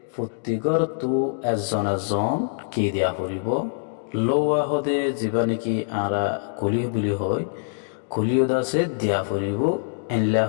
প্রত্যেকর তু এজন কি দিয়া ফুরিব লৌয়া হদে যিবা নাকি আরা কুলি বুলি হয় কুলিও দাসে দিয়া ফুরিব এনলা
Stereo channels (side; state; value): right; silent; digital silence